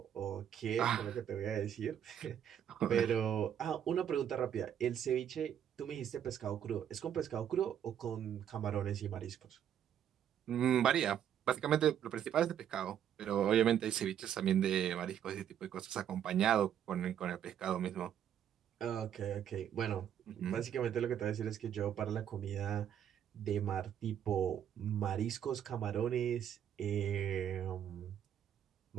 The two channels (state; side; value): quieter; left; 9.6 dB